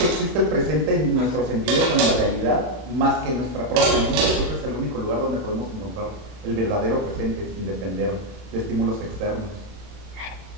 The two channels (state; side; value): late; left; 32 ms